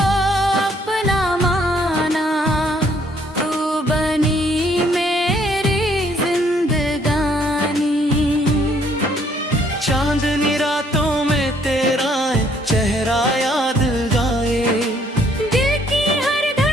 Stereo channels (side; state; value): both; normal; correlation 0.65